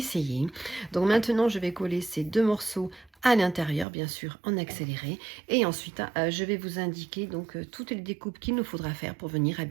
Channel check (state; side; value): drops out; left; at 3.9 s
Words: Donc maintenant, je vais coller ces deux morceaux à l'intérieur, bien sûr en accéléré, et ensuite je vais vous indiquer donc toutes les découpes qu'il nous faudra faire pour venir